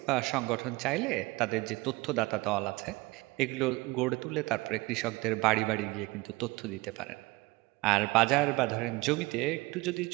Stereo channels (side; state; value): left; quieter; 22.4 dB